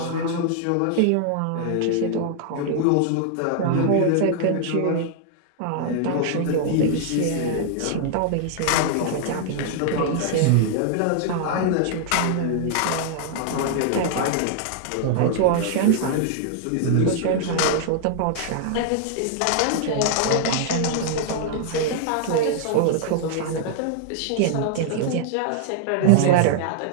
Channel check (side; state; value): both; different; correlation -0.01